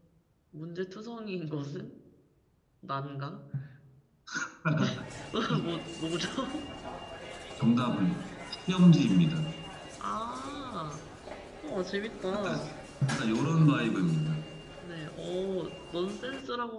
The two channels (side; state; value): both; identical; correlation 1.00